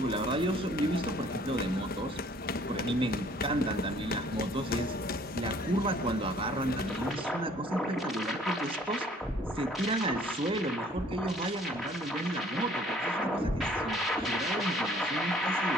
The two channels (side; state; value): both; normal; correlation 0.57